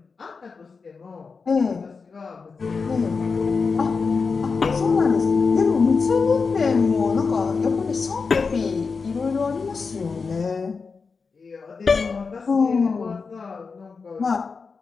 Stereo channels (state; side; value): quieter; right; 4.9 dB